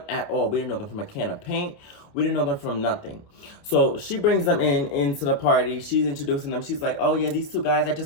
at all. We didn't know them from a can of paint. We didn't know them from nothing. So she brings them into the party. She's introducing them. She's like, oh yeah, these two guys, I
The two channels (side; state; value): right; late; 28 ms